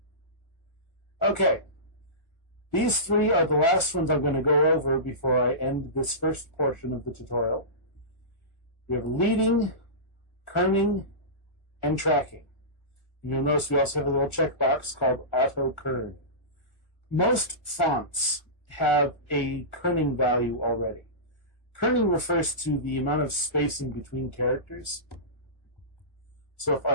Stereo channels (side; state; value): right; late; 1.5 ms